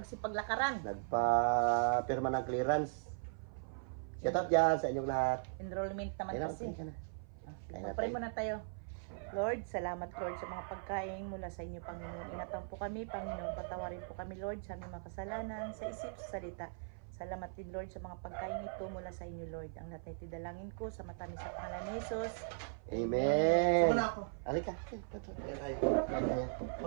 Nagpa-pirma ng clearance. Shout out dyan sa inyong lahat. Enrollment naman Ayun, kasi. ayun na. Pray muna tayo. Lord, salamat Lord sa mga pagkain mula sa inyo, Panginoon. Ingatan po kami, Panginoon. Patawarin po kami, Lord, sa aming mga kasalanan, sa isip, sa salita. Salamat din, Lord, sa mga pagkain ito mula sa inyo, Lord. Ang lahat na itidalangin ko sa matamis sa pangalan ni Jesus. Amen. Suma na ako. Halika. Ayan tayo.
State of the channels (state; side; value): silent; left; 52 dB below the other